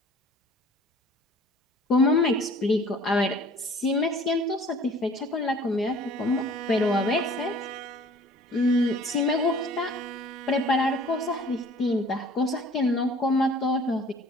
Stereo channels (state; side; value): normal; both; correlation 0.50